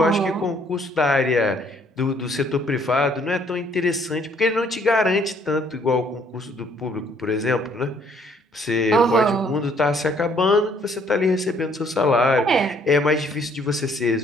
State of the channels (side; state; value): both; normal; correlation 0.64